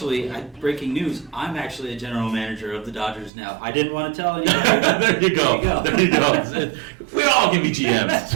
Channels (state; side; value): drops out; left; at 3.3 s